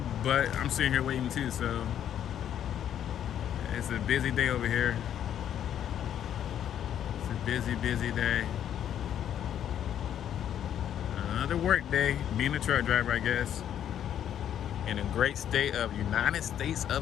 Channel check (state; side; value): quieter; right; 10.0 dB